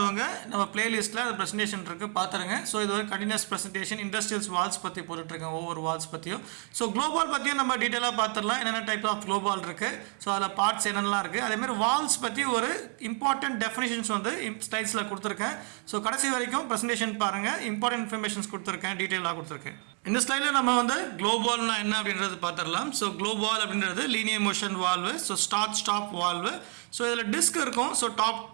நம்ம பிளேலிஸ்ட்ல அந்த பிரசன்டேஷன் இருக்கு பாத்துருங்க. ஸோ இது ஒரு கண்டினியூஸ் பிரசன்டேஷன் இண்டஸ்ட்ரியல்ஸ் வால்ஸ் பத்தி போட்டுட்டு இருக்கேன், ஒவ்வொரு வால்ஸ் பத்தியும். ஸோ குளோபால் பத்தியும் நம்ம டீட்டெயிலாக பார்த்துடலாம், என்னென்ன டைப் ஆஃப் குளோபால் இருக்கு, ஸோ அதில் பார்ட்ஸ் என்னென்னலாம் இருக்கு. அதே மாதிரி வால்ஸ் பத்தி ஒரு இம்பார்ட்டன்ட் டெஃபினிஷன்ஸ் வந்து ஸ்லைட்ஸ்ல கொடுத்துருக்கேன். ஸோ கடைசி வரைக்கும் பிரசன்டேஷன் பாருங்க, இம்பார்ட்டன்ட் இன்ஃபர்மேஷன்ஸ் கொடுத்துருக்கேன், டீட்டெயிலாக கொடுத்துருக்கேன். இந்த ஸ்லைடில் நம்ம வந்து குளோபால்னா என்ன அப்படின்றது பார்த்துடலாம். ஸோ குளோபால் அப்படின்றது linear motion valve, so stop valve. So இதில் டிஸ்க் இருக்கும். ஸோ டாப்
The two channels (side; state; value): left; quieter; 37.4 dB